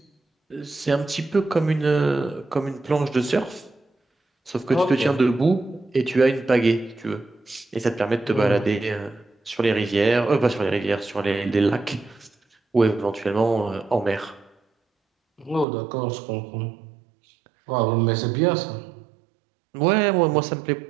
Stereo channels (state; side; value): drops out; left; at 15.7 s